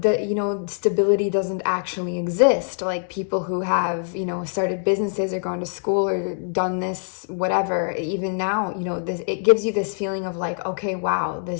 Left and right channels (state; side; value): silent; right; 63 dB below the other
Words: you know, stability doesn't actually exist. Like people who have, you know, started businesses or gone to school or done this, whatever, even now, you know, it gives you this feeling of like, okay, wow,